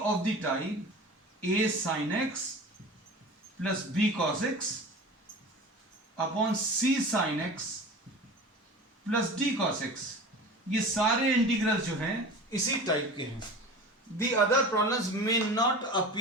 of the type a sin x plus b cos x upon c sin x plus d cos x. ये सारे इंटीग्रल्स जो हैं इसी टाइप के हैं. The other problems may not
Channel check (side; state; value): both; normal; correlation 0.36